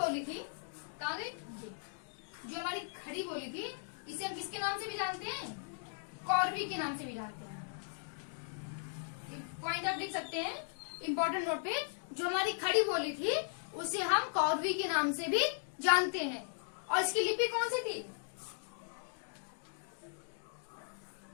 थी, कहाँ गई? जो हमारी खड़ी बोली थी इसे हम किसके नाम से भी जानते हैं? कौरवी के नाम से भी जानते हैं। पॉइंट आप लिख सकते हैं इंपॉर्टेंट नोट पे। जो हमारी खड़ी बोली थी उसे हम कौरवी के नाम से भी जानते हैं। और इसकी लिपि कौन सी थी?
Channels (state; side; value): silent; right; digital silence